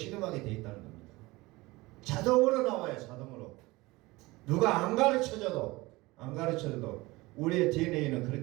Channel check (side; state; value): left; quieter; 21.4 dB